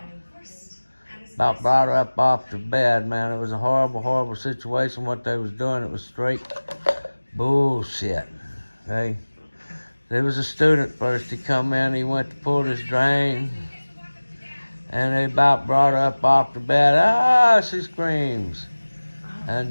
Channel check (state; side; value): inverted; both; correlation -1.00